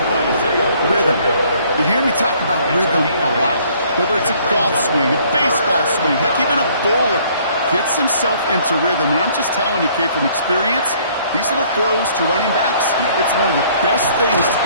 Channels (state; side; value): inverted; both; correlation -0.60